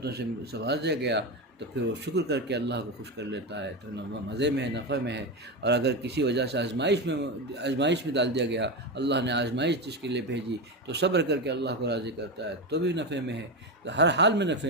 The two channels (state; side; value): normal; both; correlation 0.15